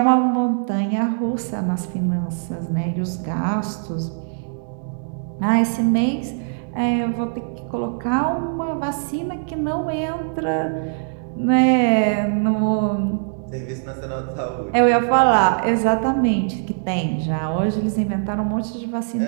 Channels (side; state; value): left; silent; digital silence